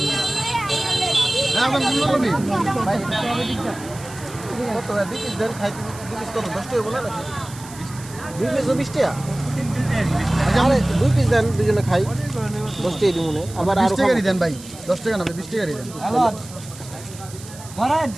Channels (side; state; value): right; noise; hiss, 17 dB below the sound